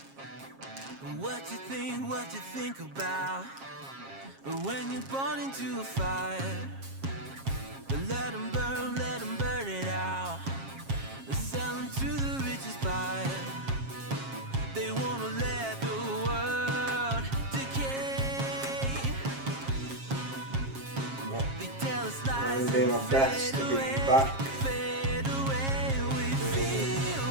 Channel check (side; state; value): left; late; 7.4 ms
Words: What you think about when you're born into a fire? Let them burn it out. Sell them to the richest buyer. They wanna let the world decay. They tell us lies. I'm doing my best to be back